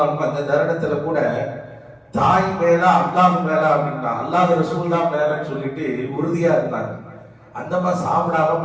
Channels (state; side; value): identical; both; correlation 1.00